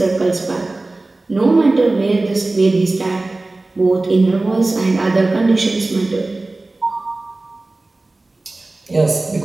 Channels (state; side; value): quieter; left; 3.1 dB